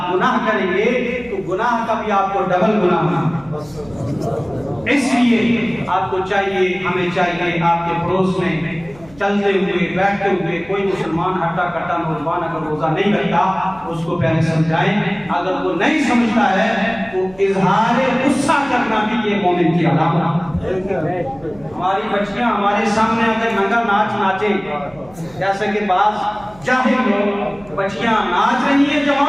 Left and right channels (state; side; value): noise; right; hum, 24 dB below the sound